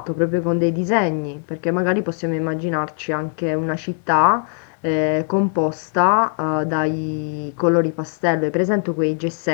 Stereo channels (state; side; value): silent; right; 55 dB below the other